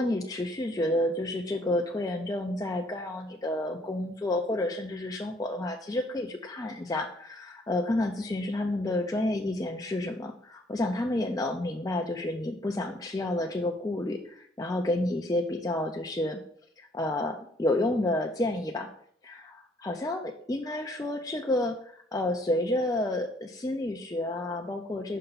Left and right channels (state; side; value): normal; both; correlation 0.63